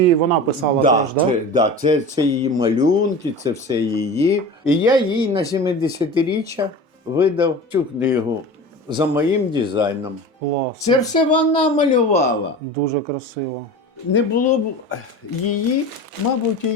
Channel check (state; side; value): normal; both; correlation 0.33